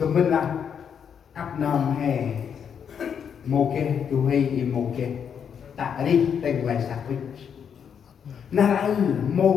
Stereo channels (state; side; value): quieter; right; 7.6 dB